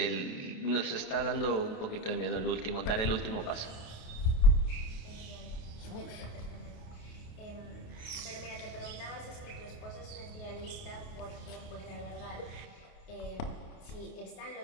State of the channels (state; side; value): late; right; 28 ms